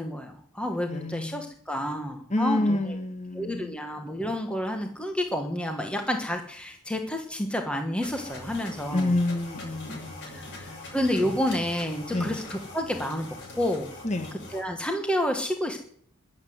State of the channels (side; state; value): both; normal; correlation 0.79